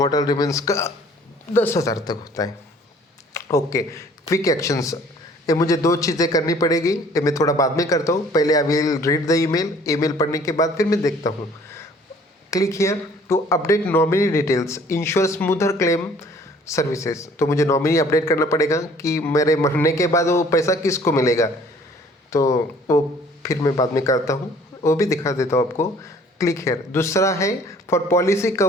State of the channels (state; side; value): normal; both; correlation 0.55